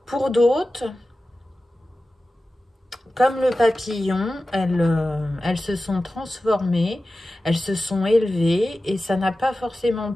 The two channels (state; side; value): normal; both; correlation 0.95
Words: Pour d'autres, comme le papillon, elles se sont transformées, elles se sont élevées et ça n'a pas forcément